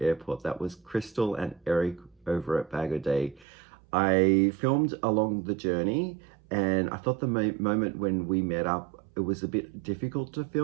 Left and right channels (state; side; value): drops out; left; at 3.5 s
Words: That was Crystal and Eric over at Bag O' Day. I filmed along the journey, and I thought the moment when we met up, it was a bit difficult to